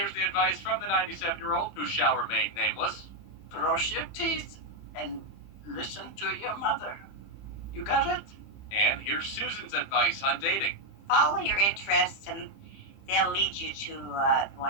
the advice from the 97-year-old, who shall remain nameless. Brush your teeth and listen to your mother. You got it? And here's Susan's advice on dating. Follow your interests and they'll lead you to the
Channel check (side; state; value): right; late; 30 ms